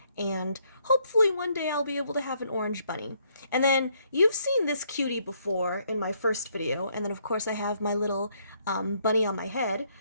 and hopefully one day I'll be able to have an orange bunny. And then you've seen this cutie before in my first video, and then of course I have my little bunny on my head,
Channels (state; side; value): inverted; both; correlation -0.71